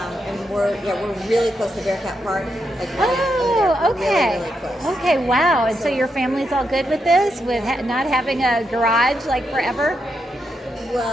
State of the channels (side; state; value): both; normal; correlation 0.83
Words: we're really close to Bearcat Park. Okay. Really close. Okay. Wow. And so your family's all good with this, with not having a garage like forever?